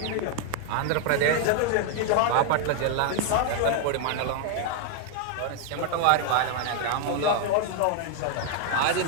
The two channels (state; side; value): different; both; correlation 0.00